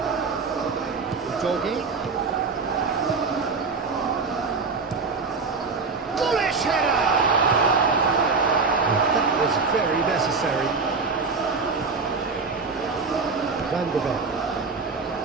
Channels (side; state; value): left; quieter; 4.5 dB